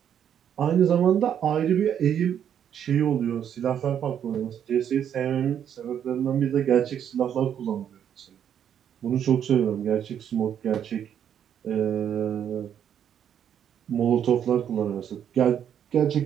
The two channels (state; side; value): quieter; left; 9.1 dB